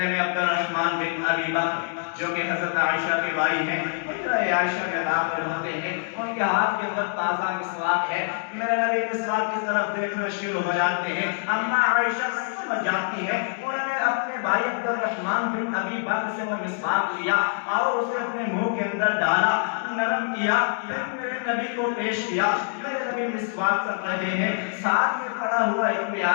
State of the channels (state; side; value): silent; right; digital silence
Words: میں عبد الرحمن بن ابی بکر جو کہ حضرت عائشہ کے بھائی ہیں حجرہ عائشہ میں داخل ہوتے ہیں، ان کے ہاتھ کے اندر تازہ مسواک ہے۔ میرے نبی مسواک کی طرف دیکھنا شروع ہو جاتے ہیں، اما عائشہ سمجھ جاتی ہے، انہوں نے اپنے بھائی عبد الرحمن بن ابی بکر سے وہ مسواک لیا اور اسے اپنے منہ کے اندر ڈالا، نرم کیا، پھر میرے نبی کو پیش کیا۔ میرے نبی مسواک کر رہے ہیں، ساتھ میں پڑا ہوا ایک